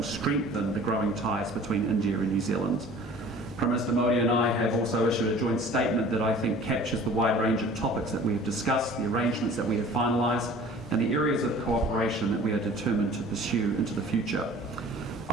strengthen the growing ties between India and New Zealand. Prime Minister Modi and I have also issued a joint statement that I think captures the wide range of topics that we have discussed, the arrangements that we have finalised, and the areas of cooperation that we are determined to pursue into the future.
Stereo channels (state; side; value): normal; both; correlation 0.47